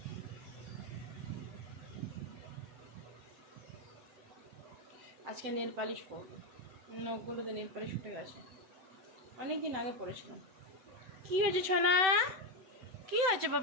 আজকে নেল পালিশ করবো, নখগুলোতে নেল পালিশ উঠে গেছে, অনেক দিন আগে পড়েছিলাম। কি হয়েছে সোনা? কি হয়েছে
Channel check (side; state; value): left; late; 7.8 ms